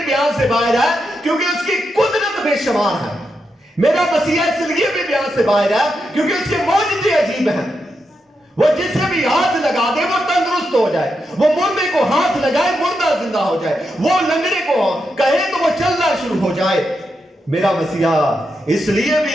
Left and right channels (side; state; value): both; normal; correlation 0.85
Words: बयान से बाहर है क्योंकि उसकी कुदरत बेशुमार है। मेरा मसीहा इसलिए भी बयान से बाहर है क्योंकि उसके मौजज़े अजीब हैं। वो जिसे भी हाथ लगा दे वो तंदुरुस्त हो जाए, वो मुर्दे को हाथ लगाए मुर्दा जिंदा हो जाए, वो लंगड़े को कहे तो वो चलना शुरू हो जाए। मेरा मसीहा इसलिए